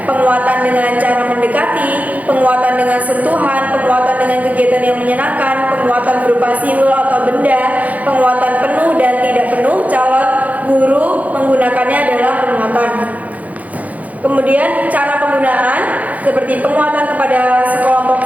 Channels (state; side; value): late; left; 0.074 ms